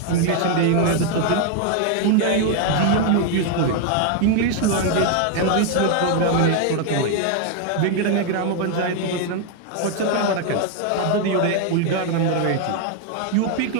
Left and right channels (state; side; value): different; both; correlation 0.01